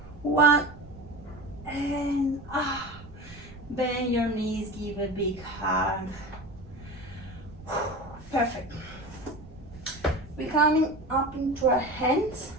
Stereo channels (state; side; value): noise; right; rumble, 18 dB below the sound